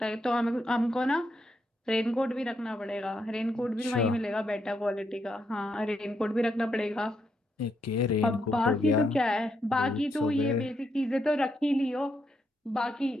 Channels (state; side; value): normal; both; correlation 0.79